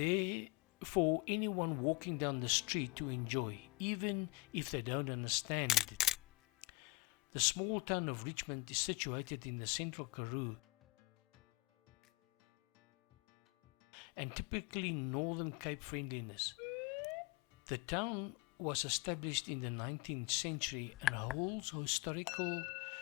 for anyone walking down the street to enjoy, even if they don't understand it. The small town of Richmond is situated in the central Karoo and typically Northern Cape friendliness. The town was established in the 19th century and holds historical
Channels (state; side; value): quieter; right; 21.7 dB